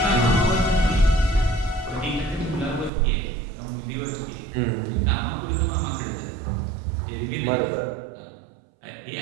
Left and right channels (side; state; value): left; drops out; at 2.9 s